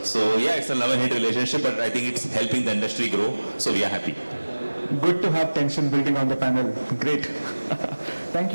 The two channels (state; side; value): inverted; both; correlation -1.00